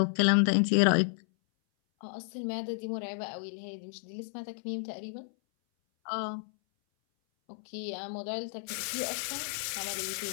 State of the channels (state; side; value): silent; right; 57 dB below the other